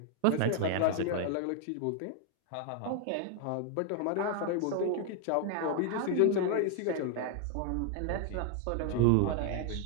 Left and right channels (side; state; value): both; different; correlation 0.00